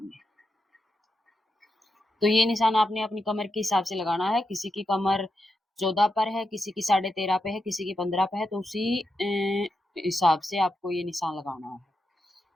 तो ये निशान आपने अपनी कमर के हिसाब से लगाना है। किसी की कमर 14 पर है, किसी की 13.5 पे है, किसी की 15 पे है, तो उसी हिसाब से आपको ये निशान लगाना है।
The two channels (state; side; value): normal; both; correlation 0.86